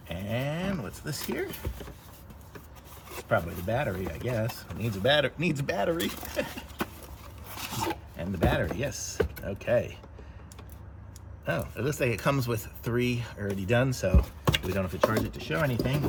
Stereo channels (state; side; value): identical; both; correlation 1.00